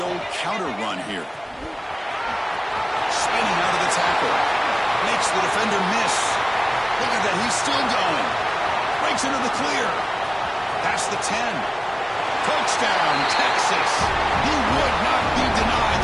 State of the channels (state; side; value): identical; both; correlation 1.00